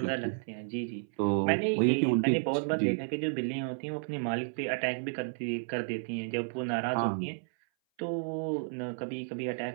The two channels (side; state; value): left; silent; 57 dB below the other